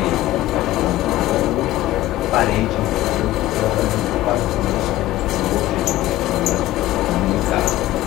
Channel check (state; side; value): quieter; right; 15.6 dB